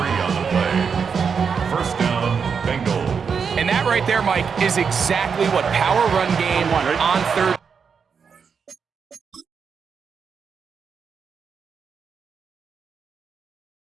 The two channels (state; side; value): quieter; left; 6.2 dB